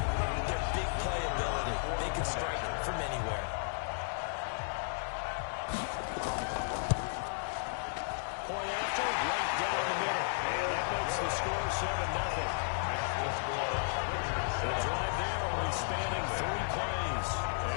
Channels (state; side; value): silent; right; digital silence